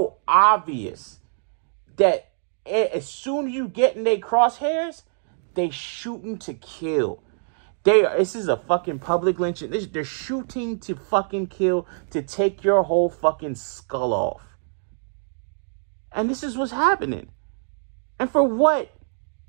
obvious that as soon as you get in their crosshairs, they shooting to kill. This is a fucking public lynching. They're shooting to fucking kill, to take your whole fucking skull off. And this is what's happening. And for what?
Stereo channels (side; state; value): left; silent; digital silence